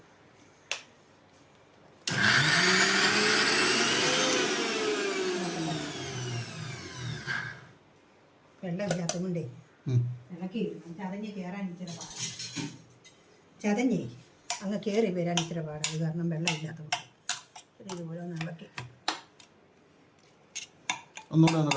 വെള്ളമില്ലാത്തതുകൊണ്ടേ ഇളക്കി ചതഞ്ഞ് കയറാൻ ഇച്ചിരി പാടാണ്. ചതഞ്ഞേ അങ്ങ് കയറി വരാൻ ഇച്ചിരി പാടാണ്. കാരണം വെള്ളമില്ലാത്തതുകൊണ്ട് ഇതുപോലെ ഒന്ന് ഇളക്കി ഒന്നുകൂടെ ഒന്ന്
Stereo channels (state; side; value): identical; both; correlation 1.00